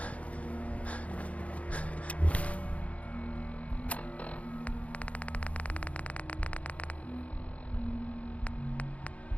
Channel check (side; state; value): right; late; 0.066 ms